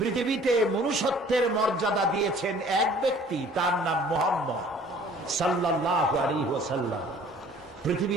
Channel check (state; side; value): normal; both; correlation 0.52